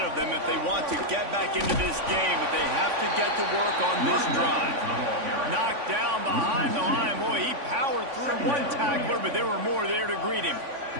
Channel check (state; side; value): late; left; 3.5 ms